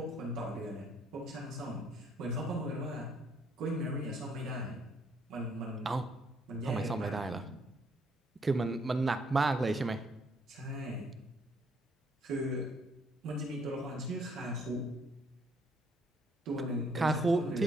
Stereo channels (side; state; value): both; normal; correlation 0.67